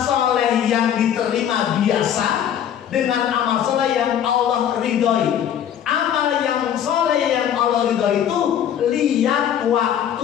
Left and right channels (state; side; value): quieter; right; 9.6 dB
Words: yang diterima biasa dengan amal soleh yang Allah ridhoi. Amal yang soleh yang Allah ridhoi itu lihat